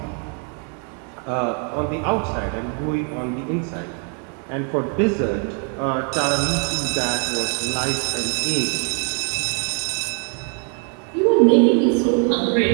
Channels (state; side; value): quieter; left; 39.3 dB